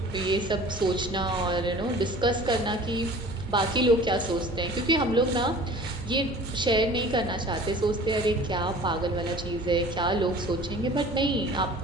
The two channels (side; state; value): both; normal; correlation 0.45